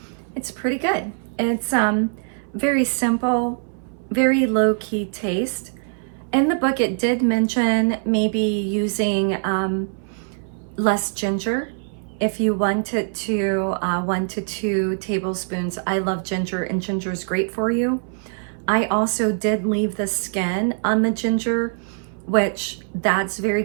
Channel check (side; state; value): left; silent; 60 dB below the other